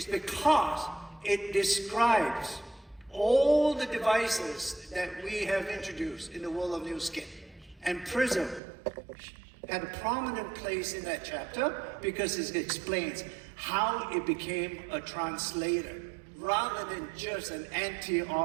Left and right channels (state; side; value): drops out; left; at 8.6 s